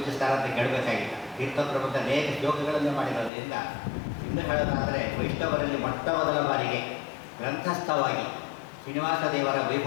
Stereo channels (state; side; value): drops out; right; at 3.3 s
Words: ಅಂತ ಕೇಳಬೇಕಾಗಿಲ್ಲ. ತೀರ್ಥಪ್ರಬಂಧ ಅನೇಕ ಶ್ಲೋಕಗಳನ್ನು ಮಾಡಿರೋದ್ರಿಂದ ಇನ್ನು ಹೇಳೋದಾದರೆ ವೈಷ್ಣವರಲ್ಲಿ ಮೊಟ್ಟ ಮೊದಲ ಬಾರಿಗೆ ಗ್ರಂಥಸ್ಥವಾಗಿ ಶ್ರೀನಿವಾಸ ದೇವರ